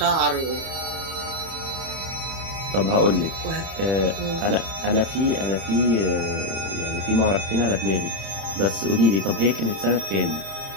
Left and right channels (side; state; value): left; late; 31 ms